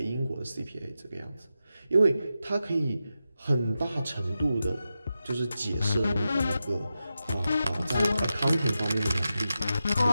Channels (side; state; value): both; inverted; correlation -0.90